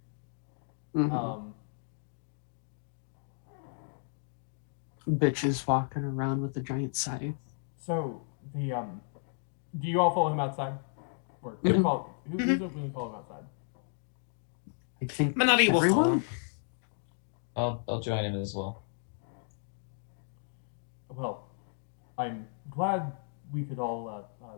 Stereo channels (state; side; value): silent; right; digital silence